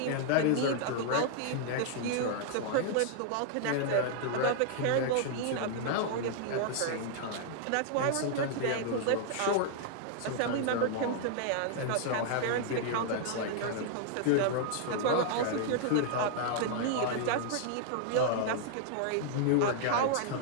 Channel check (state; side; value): different; both; correlation -0.01